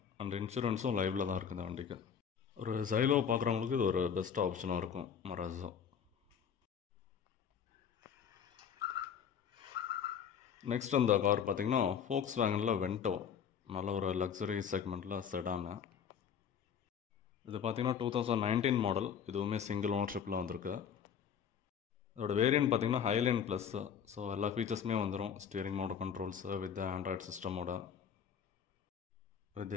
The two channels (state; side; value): quieter; right; 7.7 dB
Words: அண்ட் இன்சூரன்ஸும் லைவில் தான் இருக்குது இந்த வண்டிக்கு. ஒரு ஜைலோ பார்க்குறவங்களுக்கு இது ஒரு பெஸ்ட் ஆப்ஷனாக இருக்கும் மராஸோ. நெக்ஸ்ட் இந்த கார் பார்த்தீங்கன்னா ஃபோக்ஸ் வேகனில் வென்டோ. நல்ல ஒரு லக்ஸரி செக்மெண்ட்டில் செடானு. இது பார்த்தீங்கன்னா 2019 மாடல். இதுவுமே சிங்கிள் ஓனர்ஷிப்பில் வந்திருக்கு. இதோட வேரியன்ட் பார்த்தீங்கன்னா ஹைலைன் ப்ளஸ்ஸு. ஸோ எல்லா ஃபீச்சர்ஸுமே வந்துடும். Steering motor controls with Android சிஸ்டமோட, வித்